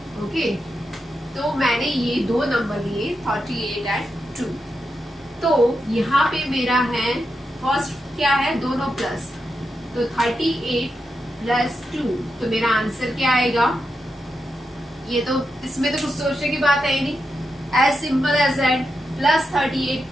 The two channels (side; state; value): both; normal; correlation 0.86